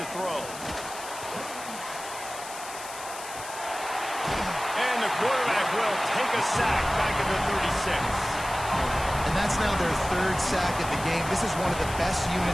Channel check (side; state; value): left; noise; hiss, 12 dB below the sound